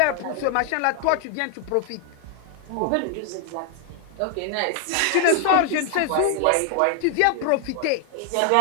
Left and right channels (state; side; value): different; both; correlation 0.00